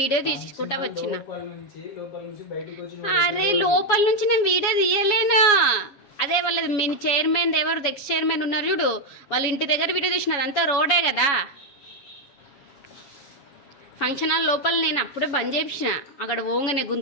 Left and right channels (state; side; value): late; right; 7.2 ms